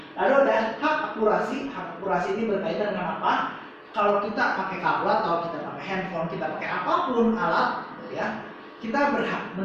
Lalu ada hak akurasi. Hak akurasi ini berkaitan dengan apa? Kalau kita pakai kabel atau kita pakai handphone, kita pakai apapun alat gitu ya, kita berhak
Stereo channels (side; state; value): both; identical; correlation 1.00